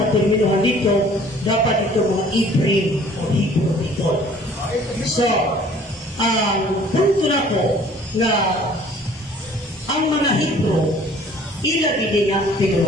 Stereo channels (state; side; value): normal; both; correlation 0.53